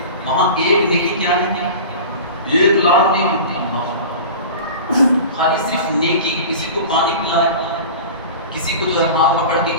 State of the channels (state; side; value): inverted; both; correlation -0.35